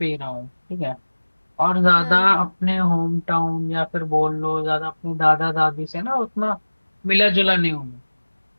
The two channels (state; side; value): inverted; both; correlation -1.00